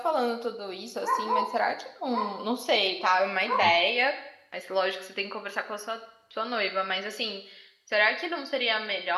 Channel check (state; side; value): identical; both; correlation 1.00